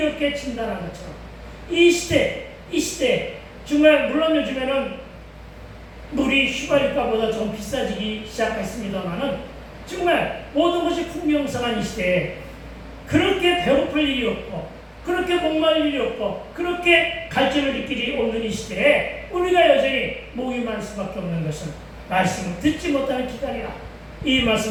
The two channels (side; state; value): both; identical; correlation 1.00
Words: 진단한 것처럼 이 시대 정말 물론 요즘에는 물이 휘발유가보다 좀 비싸지기 시작했습니다만은 정말 모든 것이 풍요성한 이 시대에 그렇게 배고플 일이 없고 그렇게 목마를 일이 없고 그렇게 갈증을 느낄 일이 없는 이 시대에 우리가 여전히 목이 말 수밖에 없는 것은 말씀을 듣지 못하는 기갈이라. 이